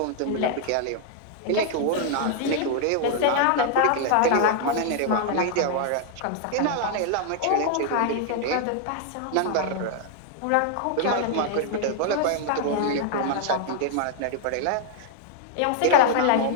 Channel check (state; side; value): different; both; correlation 0.00